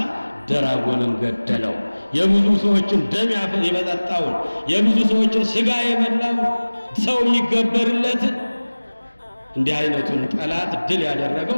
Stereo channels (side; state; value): both; inverted; correlation -1.00